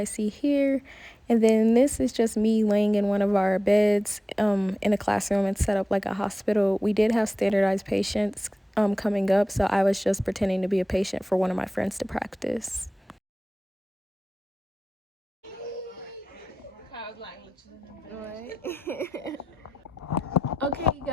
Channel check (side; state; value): both; normal; correlation 0.94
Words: see here. And then this is just me laying in one of our beds in a classroom. It's set up like a hospital. We did have standardized patients coming up, so I was just pretending to be a patient for one of my friends to practice. Okay